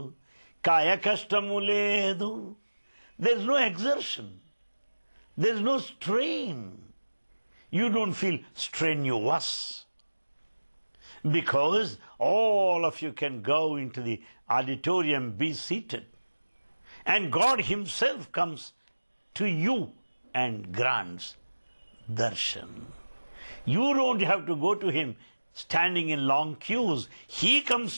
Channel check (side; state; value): both; inverted; correlation -1.00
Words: kaya kashtamu ledu. There's no exertion. There's no strain. You don't feel strenuous. Because all of you can go into the auditorium, be seated. And God Himself comes to you and grants darshan. You don't have to go to Him standing in long queues. He